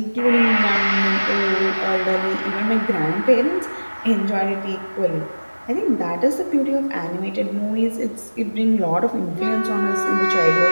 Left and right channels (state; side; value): inverted; both; correlation -1.00